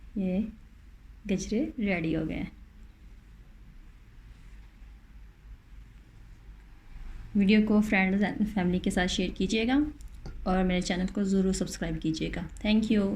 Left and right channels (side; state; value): both; identical; correlation 1.00